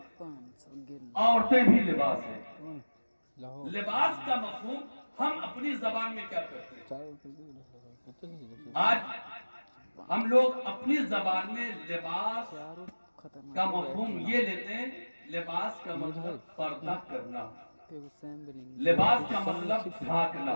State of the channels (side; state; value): both; inverted; correlation -1.00